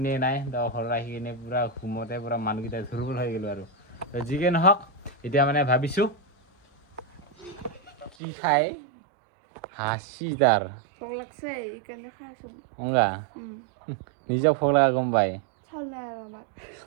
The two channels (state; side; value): drops out; left; at 8.1 s